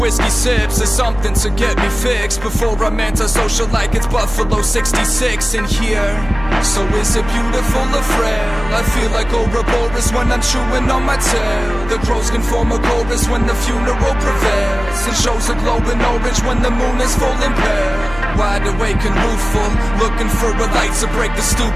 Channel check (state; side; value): noise; left; hum, 15 dB below the sound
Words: sips is something to get me fixed before I'm antisocial like it's Buffalo 66 in here. So is it beautiful or frail? I feel like Ouroboros when I'm chewing on my tail. The crows can form a chorus when the funeral prevails, and shows a glow in orange when the moon is full and pale. Wide awake and rueful, looking for a light to break the